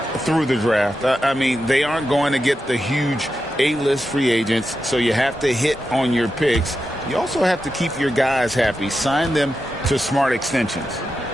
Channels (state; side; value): normal; both; correlation 0.89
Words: Through the draft. I mean, they aren't going to get the huge A-list free agents, so you have to hit on your picks. You also have to keep your guys happy. Sign them to smart extensions.